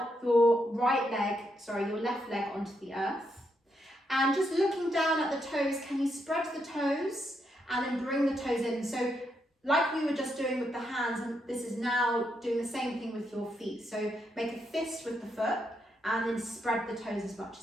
your your left leg onto the earth. And just looking down at the toes, can you spread the toes and then bring the toes in? So like we were just doing with the hands, and this is now doing the same thing with your feet. So make a fist with the foot and then spread the toes as much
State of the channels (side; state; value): both; normal; correlation 0.80